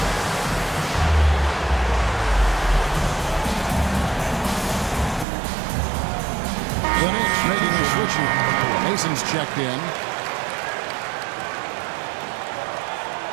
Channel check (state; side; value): drops out; left; at 5.2 s